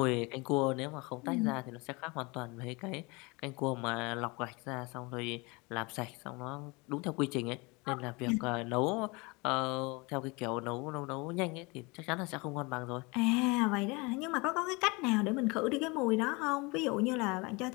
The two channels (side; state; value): right; quieter; 26.7 dB